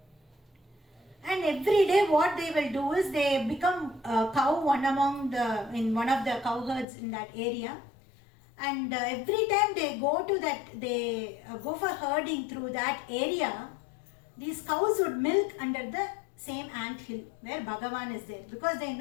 And every day what they will do is they become a cow in one of the cow herds in that area. And every time they go for herding through that area, these cows would milk under the same ant hill where Bhagavan is there. Because they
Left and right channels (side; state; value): right; drops out; at 6.9 s